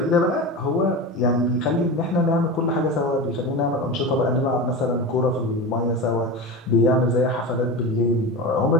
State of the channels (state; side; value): normal; both; correlation 0.25